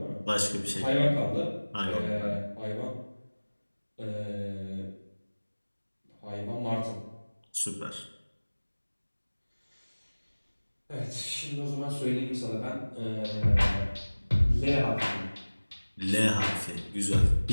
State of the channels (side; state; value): both; inverted; correlation -1.00